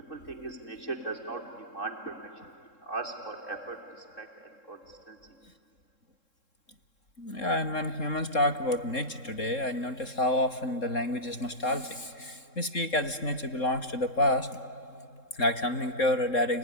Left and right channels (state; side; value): late; right; 3.7 ms